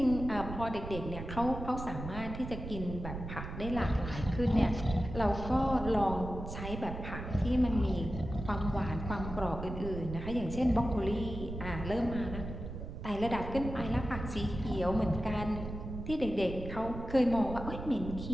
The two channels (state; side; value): noise; right; rumble, 8 dB below the sound